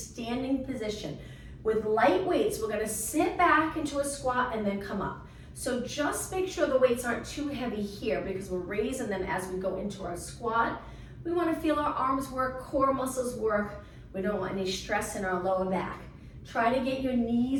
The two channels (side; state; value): both; identical; correlation 1.00